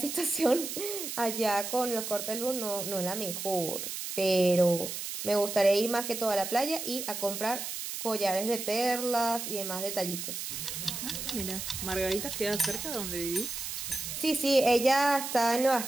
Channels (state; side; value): noise; right; hiss, 6 dB below the sound